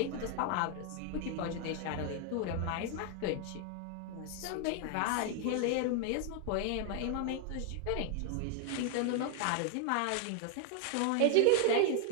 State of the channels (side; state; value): both; different; correlation 0.00